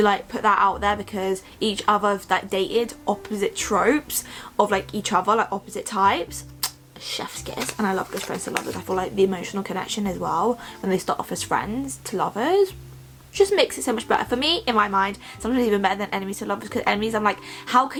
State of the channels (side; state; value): both; identical; correlation 1.00